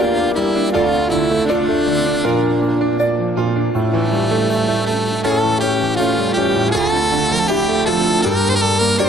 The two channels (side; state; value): both; normal; correlation 0.67